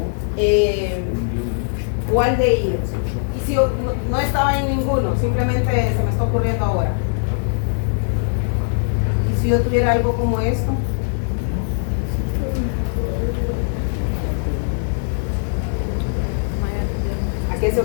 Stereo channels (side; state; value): right; silent; digital silence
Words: aldehídos. Y si no estaba en ninguno, simplemente se me está ocurriendo ahora. Y si yo tuviera algo como esto, ¿a qué se